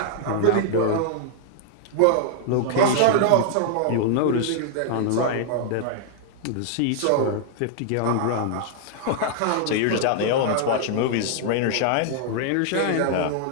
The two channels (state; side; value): different; both; correlation 0.00